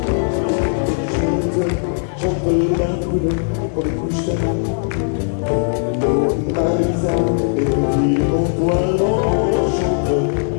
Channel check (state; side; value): silent; right; 58 dB below the other